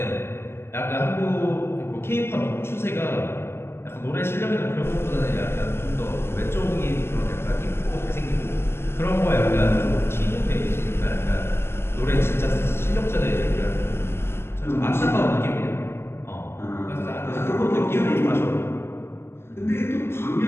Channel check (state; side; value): late; right; 0.12 ms